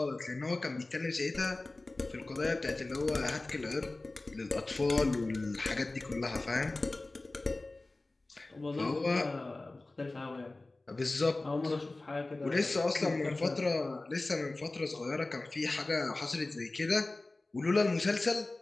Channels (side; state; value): right; quieter; 3.0 dB